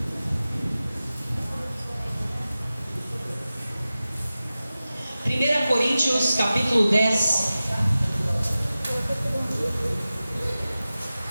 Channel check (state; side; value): inverted; both; correlation -0.95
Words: Primeira Coríntios, capítulo 10.